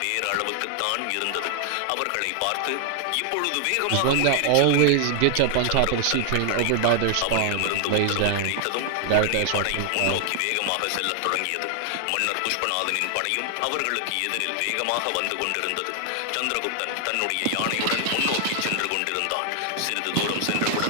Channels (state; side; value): different; both; correlation 0.00